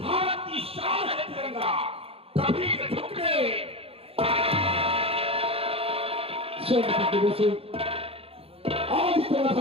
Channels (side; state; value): left; late; 0.28 ms